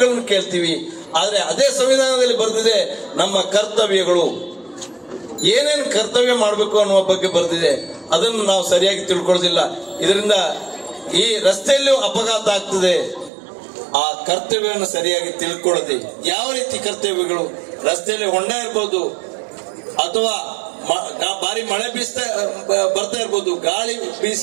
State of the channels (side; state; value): left; drops out; at 13.3 s